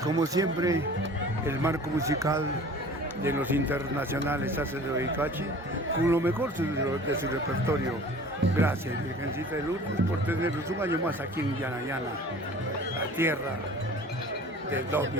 Como siempre, el marco musical de los internacionales hace de Bayucachi con lo mejor de su repertorio. Gracias, Virgencita de Lourdes, por tenernos un año más aquí en Yanayana, la tierra del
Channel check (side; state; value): both; normal; correlation 0.45